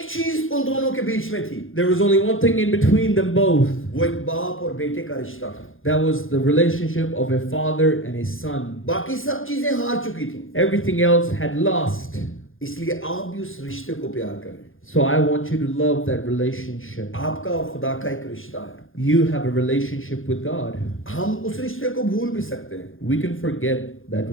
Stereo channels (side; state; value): right; late; 0.59 ms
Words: चीज उन दोनों के बीच में थी, There was only one thing in between them both. वो एक बाप और बेटे का रिश्ता था। That was the relationship of a father and a son. बाकी सब चीजें हार चुकी थी, Everything else had lost. इसलिए आप भी उस रिश्ते को प्यार करें। So I want you to love that relationship. आपका और खुदा का एक रिश्ता है, You have a relationship with God. हम उस रिश्ते को भूल भी सकते हैं, We can forget that